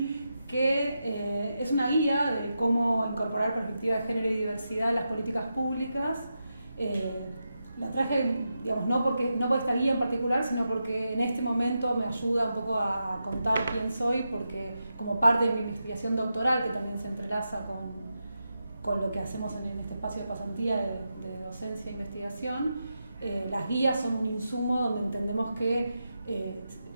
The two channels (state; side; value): inverted; both; correlation -0.88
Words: que es una guía de cómo incorporar perspectiva de género y diversidad en las políticas públicas. La traje, digamos, no por esta guía en particular, sino porque en este momento me ayuda un poco a contar quién soy, porque como parte de mi investigación doctoral, que también se entrelaza con lo que hacemos en este espacio de pasantía de docencia e investigación, las guías son un insumo donde entendemos que,